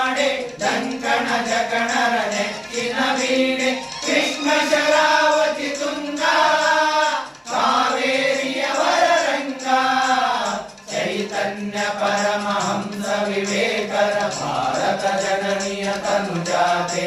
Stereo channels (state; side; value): identical; both; correlation 1.00